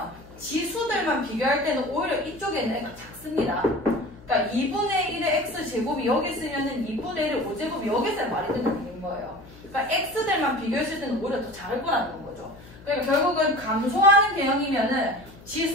지수들만 비교할 때는 오히려 이쪽에 있는 애가 작습니다. 그러니까 2분의 1의 x제곱이 여기 쓰면은 2분의 1의 5제곱이 여기 있어야 말이 되는 얘기인 거예요. 그러니까 x들만 비교했을 때는 오히려 더 작을 거라는 거죠. 그러니까 결국은 감소하는 개형이면은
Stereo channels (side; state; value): left; noise; hum, 21 dB below the sound